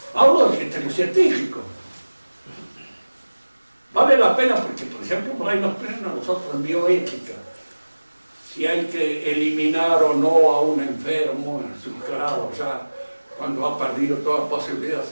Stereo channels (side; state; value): both; inverted; correlation -1.00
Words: Hablo del criterio científico. Vale la pena porque, por ejemplo, por ahí nos ponen a nosotros en bioética si hay que eliminar o no a un enfermo en sus grados ya cuando ha perdido toda posibilidad.